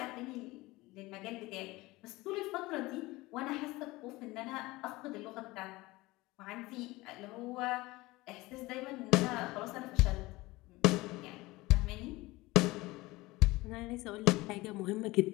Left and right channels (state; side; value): quieter; right; 20.6 dB